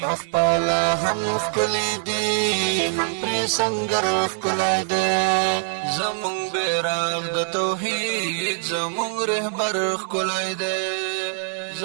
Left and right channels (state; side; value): silent; left; digital silence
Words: اخپالا هم خکلی دی هم پری سنگر خکلی دی زمون بیرغ د توحید زمون رهبر خکلی دی